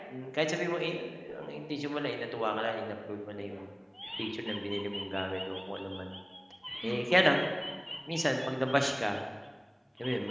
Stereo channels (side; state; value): both; identical; correlation 1.00